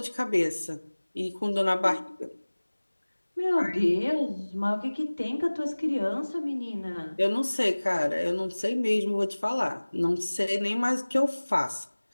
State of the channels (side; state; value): both; inverted; correlation -1.00